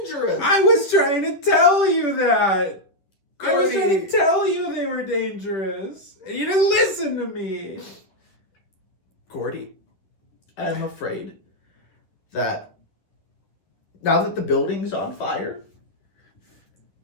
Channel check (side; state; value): right; late; 10 ms